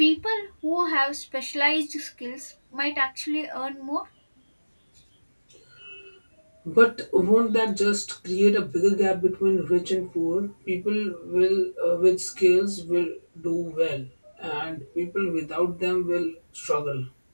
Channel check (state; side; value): inverted; both; correlation -1.00